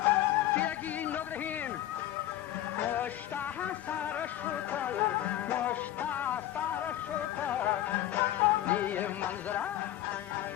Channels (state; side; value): quieter; right; 13.3 dB